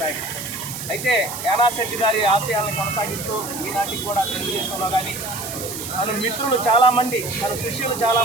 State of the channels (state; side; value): noise; right; hiss, 8 dB below the sound